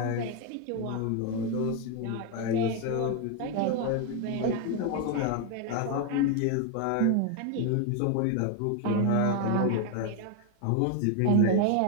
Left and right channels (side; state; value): both; different; correlation 0.01